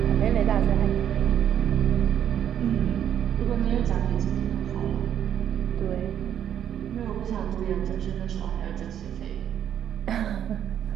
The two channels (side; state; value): left; quieter; 9.7 dB